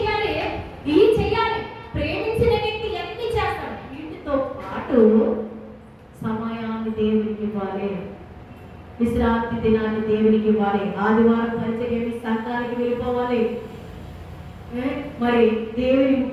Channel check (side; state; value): both; identical; correlation 1.00